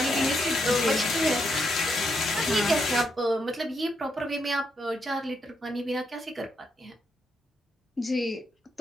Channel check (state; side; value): normal; both; correlation 0.79